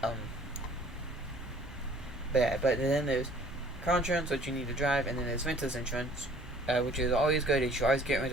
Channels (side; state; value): right; noise; rumble, 16 dB below the sound